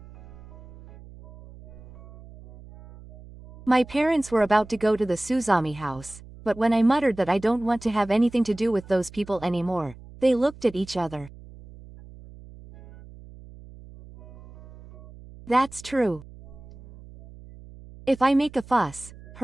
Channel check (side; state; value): right; noise; hum, 19 dB below the sound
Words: My parents were about to go to the Suzami house, but when I muttered that I don't want to have anything to do with those people anymore, they looked at each other. That's true. If I make a fuss,